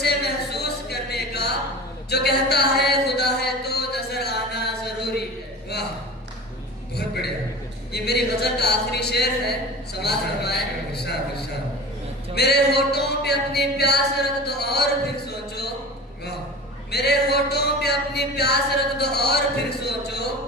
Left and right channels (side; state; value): both; normal; correlation 0.34